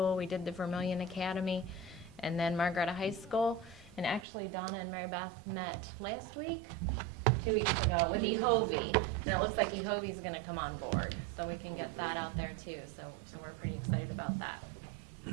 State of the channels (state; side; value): drops out; left; at 4.2 s